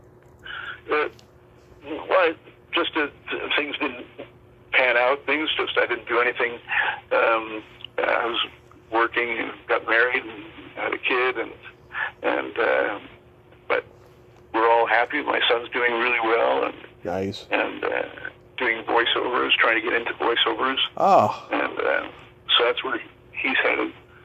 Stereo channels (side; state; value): both; identical; correlation 1.00